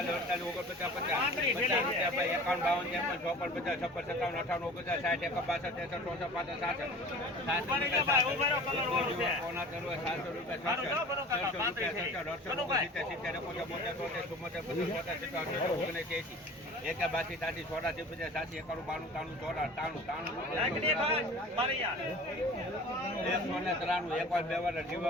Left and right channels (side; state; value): both; normal; correlation 0.41